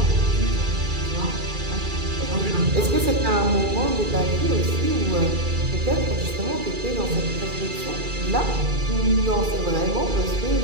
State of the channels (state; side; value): late; left; 2.4 ms